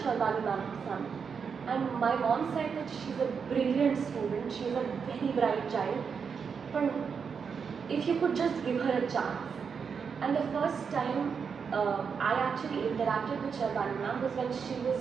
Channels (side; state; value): left; quieter; 6.2 dB